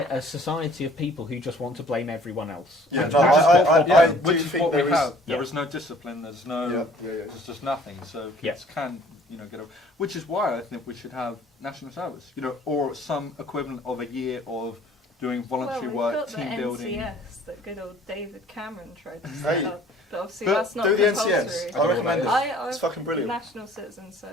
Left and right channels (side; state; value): both; normal; correlation 0.54